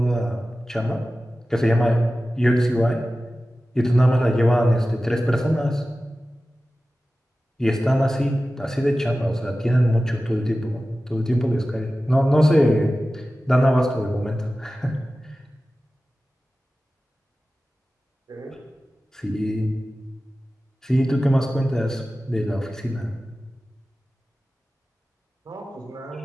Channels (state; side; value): normal; both; correlation 0.95